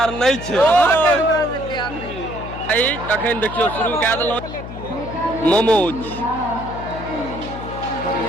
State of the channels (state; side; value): noise; left; hum, 10 dB below the sound